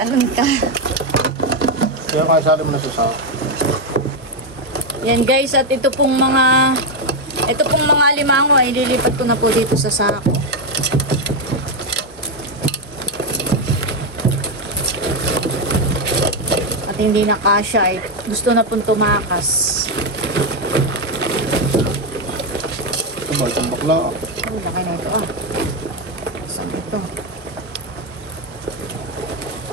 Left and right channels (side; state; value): both; normal; correlation 0.06